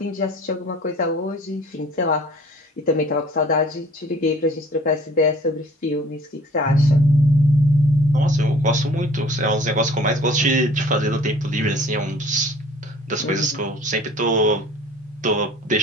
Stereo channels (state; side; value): normal; both; correlation 0.51